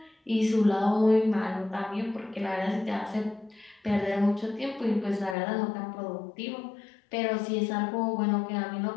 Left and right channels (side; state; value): right; drops out; at 5.4 s